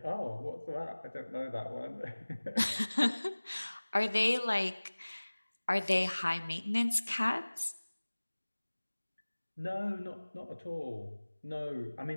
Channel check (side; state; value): both; inverted; correlation -1.00